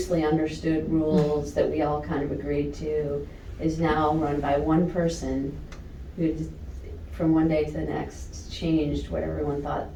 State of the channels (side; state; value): both; identical; correlation 1.00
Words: understood rules that we all kind of agreed to is now run by one person who from one day to the next changed what everyone thought